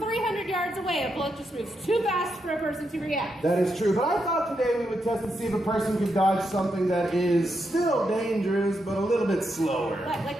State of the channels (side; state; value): both; normal; correlation 0.83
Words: yards away, a bullet just moves too fast for a person to react. That is true. But I thought today we would test to see if a person could dodge something that is still dangerous, but a little bit slower. Like